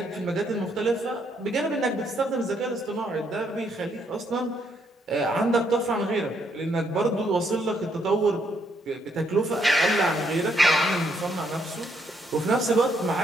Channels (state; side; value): normal; both; correlation 0.73